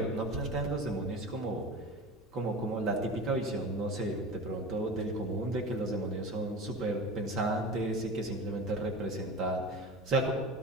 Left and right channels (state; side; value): normal; both; correlation 0.33